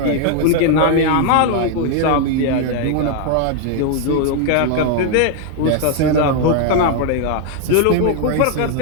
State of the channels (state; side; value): different; both; correlation 0.00